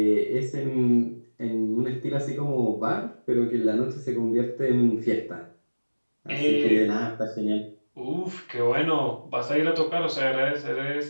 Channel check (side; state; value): both; inverted; correlation -1.00